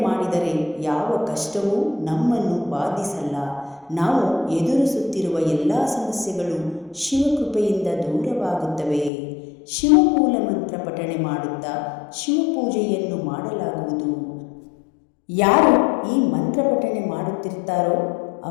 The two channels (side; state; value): right; drops out; at 9.1 s